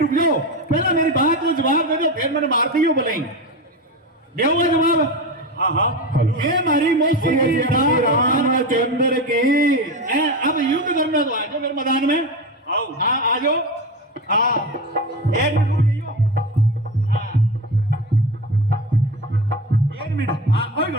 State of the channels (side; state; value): both; normal; correlation 0.23